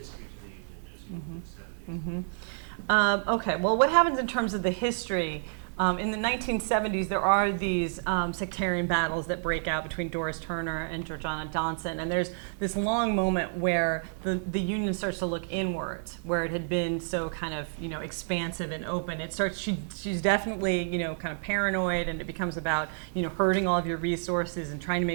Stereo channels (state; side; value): silent; left; digital silence